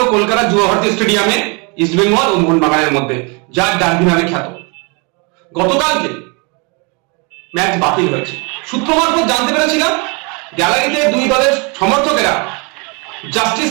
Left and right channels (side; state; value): left; quieter; 31.8 dB